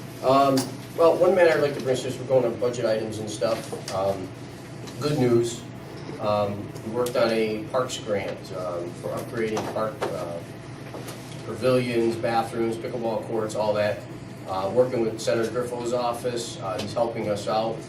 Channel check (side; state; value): both; identical; correlation 1.00